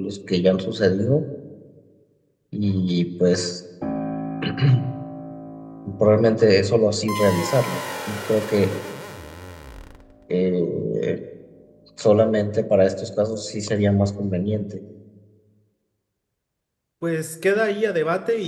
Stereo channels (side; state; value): both; identical; correlation 1.00